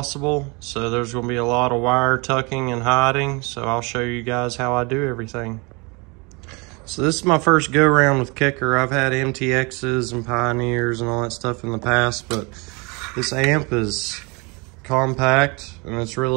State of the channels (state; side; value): quieter; left; 28.8 dB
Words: So there's gonna be a lot of wire tucking and hiding. So I'll show you guys how I do everything. So this is my first go around with Kicker. I've had MTXs and Pioneers and all that stuff in the past, but this amp is compact and it's